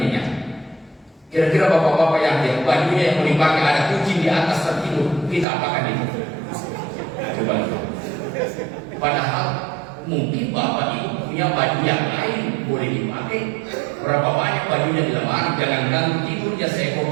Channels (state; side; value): drops out; left; at 5.5 s